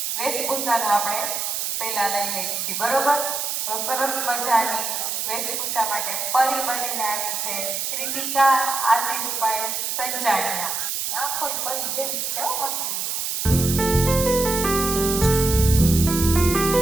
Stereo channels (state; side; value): noise; right; hiss, 2 dB below the sound